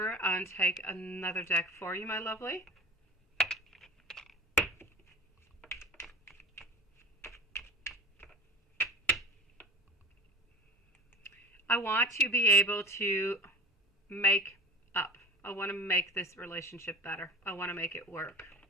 and take another deck for you, my lovely. I want to be able to make up. I want to make this relationship better. I want to make it work.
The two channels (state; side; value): normal; both; correlation 0.35